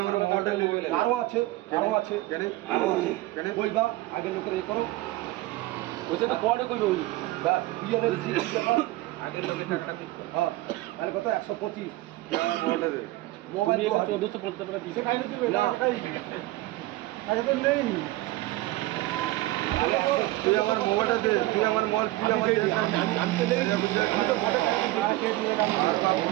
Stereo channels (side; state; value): left; quieter; 17.9 dB